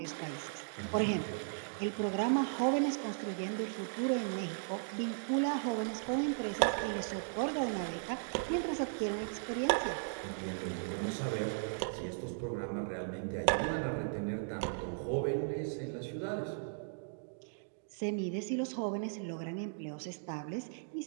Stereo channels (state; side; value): silent; left; digital silence